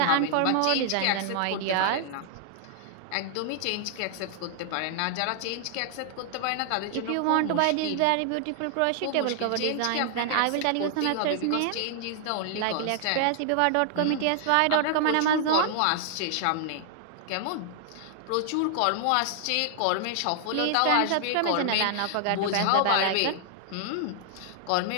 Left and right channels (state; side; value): different; both; correlation -0.01